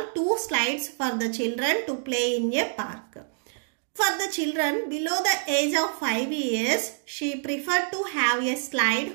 2 slides for the children to play in a park. For the children below the age of 5 years, she preferred to have a slide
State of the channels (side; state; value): left; silent; digital silence